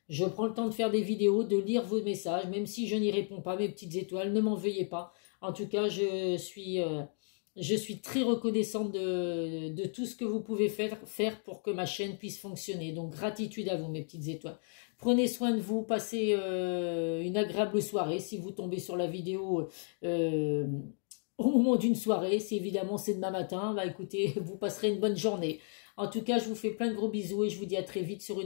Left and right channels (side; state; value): right; silent; 55 dB below the other